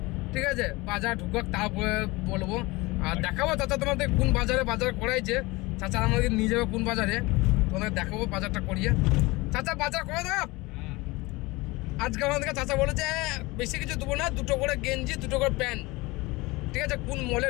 ঠিক আছে? বাজার ঢুকাক তারপরে বলবো, আর দেখাবো চাচা তোমাদের কোন বাজারে বাজার করাইছে। চাচা আমাদের নিয়ে যাবে কোন বাজারে, তোমাদের দেখাবো বাজারটা করিয়ে। চাচা বাজার করে দেব আজকে আমাদেরকে। চাচা বলেছে বেশি কিছু দেবো না, 2টো করে গেঞ্জি 2টো করে প্যান্ট, ঠিক আছে? কোন মলে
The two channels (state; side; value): quieter; right; 22.6 dB